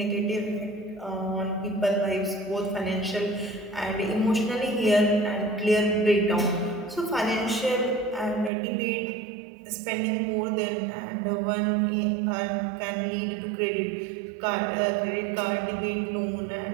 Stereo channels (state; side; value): drops out; left; at 8.5 s